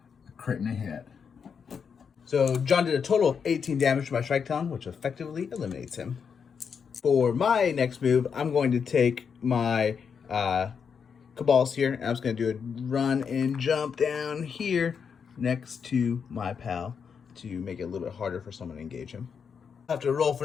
a crit and a hit. So John did a total of 18 damage to my Shrike Talon, which effectively eliminates him. For my next move, I'm going to take my Cabalist here, and I'm just going to do a run and jump down here next to my pal to make it a little bit harder for someone to engage him. I have to roll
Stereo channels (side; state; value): right; quieter; 6.5 dB